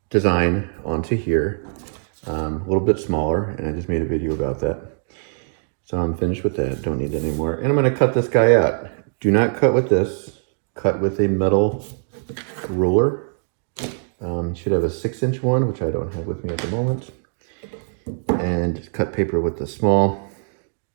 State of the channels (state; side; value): silent; left; digital silence